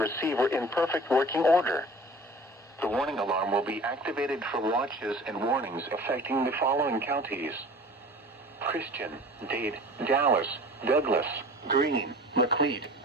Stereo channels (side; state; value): both; normal; correlation 0.42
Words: in perfect working order. The warning alarm will be activated for watches and warnings affecting the following counties: Christian, Dade, Dallas, Douglas, Greene, Macleod,